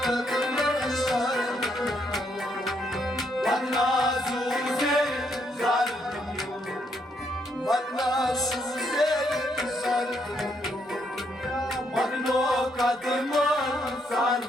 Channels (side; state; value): both; normal; correlation 0.74